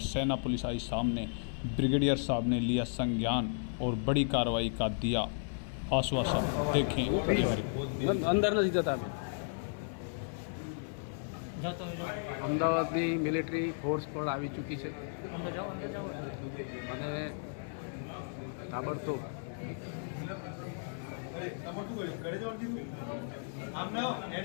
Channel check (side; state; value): right; silent; digital silence